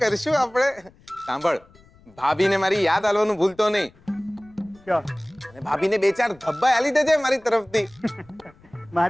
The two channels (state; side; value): noise; left; rumble, 28 dB below the sound